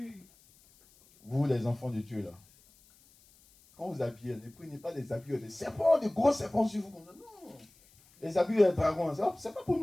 Vous, les enfants de Dieu, là. Quand vous habillez, ne prenez pas des habits de serpents, de gros serpents sur vous. Non. Les habits de dragon, c'est pas pour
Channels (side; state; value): left; noise; hiss, 28 dB below the sound